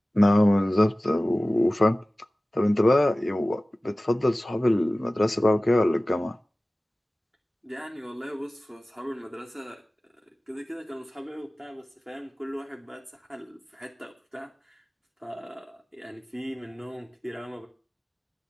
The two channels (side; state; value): both; normal; correlation 0.97